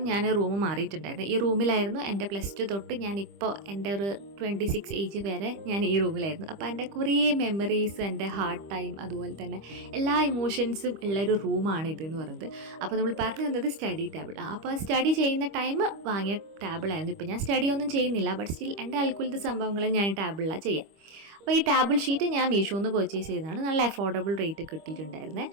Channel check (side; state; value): left; late; 25 ms